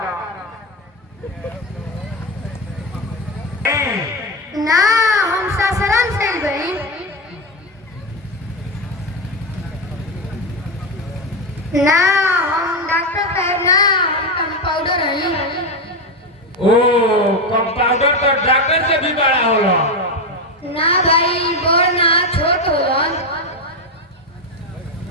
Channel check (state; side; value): normal; both; correlation 0.12